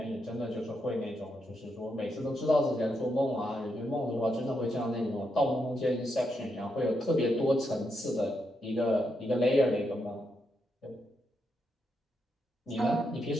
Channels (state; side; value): normal; both; correlation 0.82